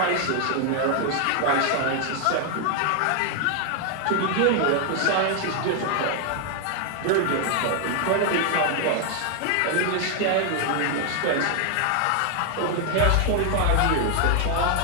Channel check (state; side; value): different; both; correlation 0.00